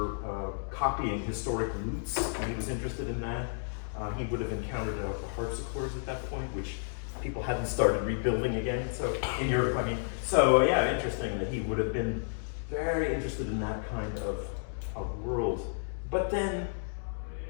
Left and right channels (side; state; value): right; silent; digital silence